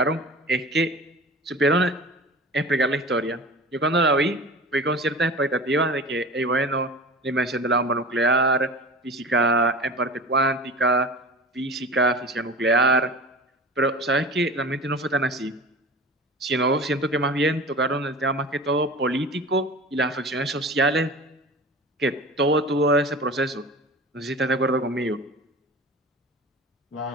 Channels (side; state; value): both; normal; correlation 0.36